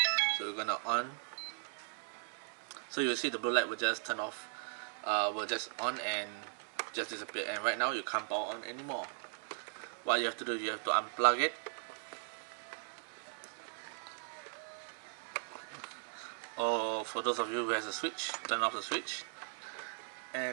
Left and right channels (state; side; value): silent; left; digital silence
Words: So we're gonna on. So you'll see the blue light will just turn off, will just on and just disappear. And right now you can't power on anymore. What you have to do, you have to unplug it, or for those of you who has a switch, turn off the switch,